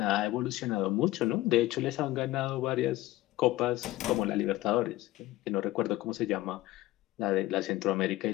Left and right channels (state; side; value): quieter; right; 16.9 dB